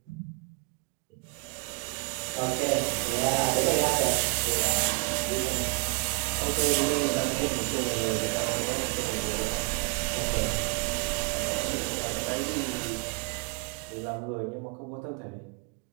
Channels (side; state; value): left; quieter; 32.8 dB